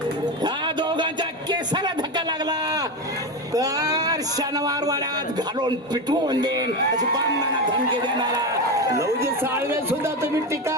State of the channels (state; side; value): normal; both; correlation 0.17